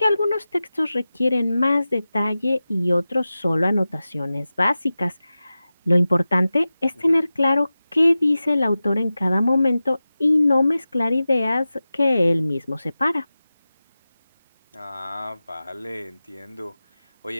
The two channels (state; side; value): inverted; both; correlation -0.95